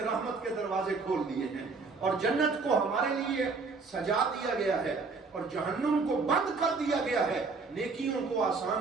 رحمت کے دروازے کھول دیے ہیں، اور جنت کو ہمارے لیے سجا دیا گیا ہے، اور جہنم کو بند کر دیا گیا ہے، نیکیوں کو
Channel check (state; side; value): quieter; left; 4.3 dB